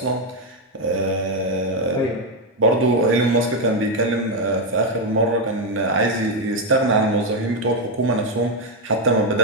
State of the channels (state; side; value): normal; both; correlation 0.04